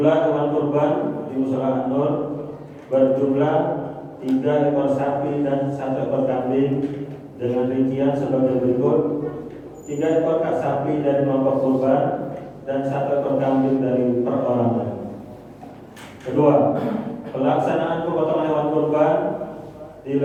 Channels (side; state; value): both; identical; correlation 1.00